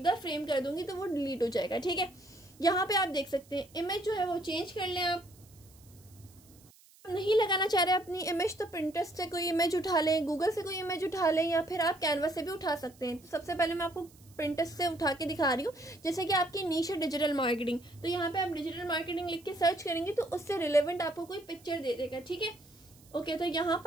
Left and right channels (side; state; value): right; noise; hiss, 26 dB below the sound